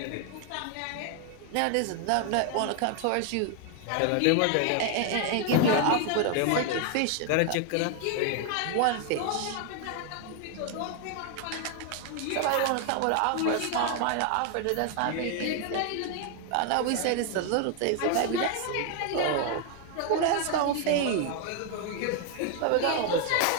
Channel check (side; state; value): both; different; correlation 0.00